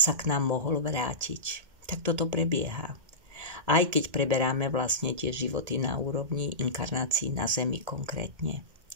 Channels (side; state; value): left; late; 1.8 ms